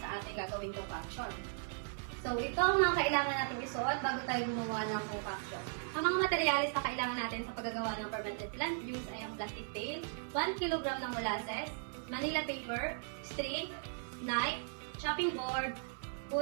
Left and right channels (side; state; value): left; silent; 53 dB below the other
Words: sa ating gagawing concoction. So, ito ang mga kailangan natin isuot bago tayo gumawa ng concoction. Ang mga materialis na kailangan natin sa paggagawa ng fermented plant juice ay ang plastic pail, 1 kg ng molasses, Manila paper, string, knife, chopping board,